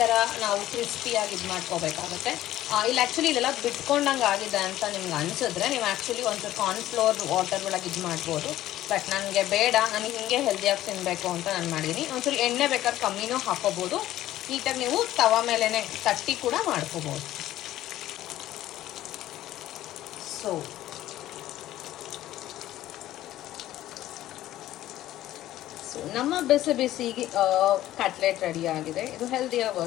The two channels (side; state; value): right; quieter; 14.1 dB